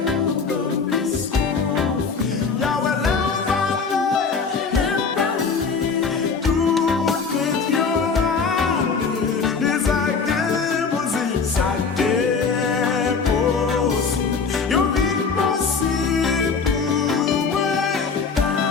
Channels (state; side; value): quieter; right; 5.2 dB